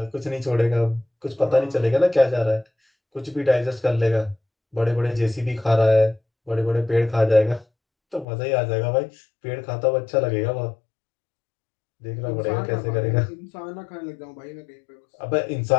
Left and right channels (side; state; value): right; drops out; at 8.2 s